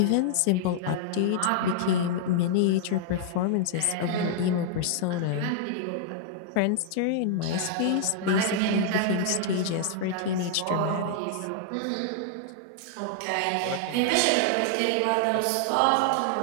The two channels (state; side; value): different; both; correlation -0.01